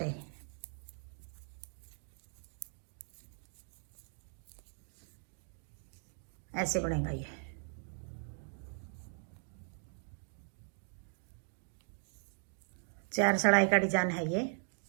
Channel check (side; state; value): left; silent; 52 dB below the other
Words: ऐसे बनेगा ये। चार सिलाई का डिजाइन है ये।